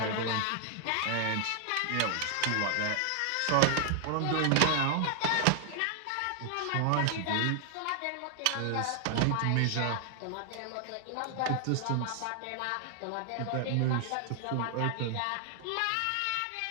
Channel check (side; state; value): both; different; correlation 0.00